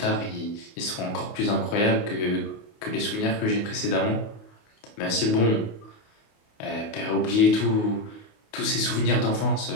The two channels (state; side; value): late; right; 28 ms